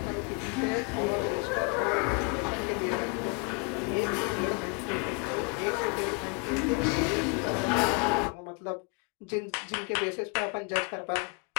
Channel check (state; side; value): quieter; right; 31.7 dB